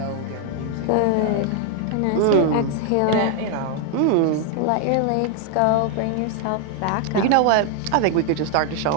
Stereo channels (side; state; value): both; different; correlation 0.00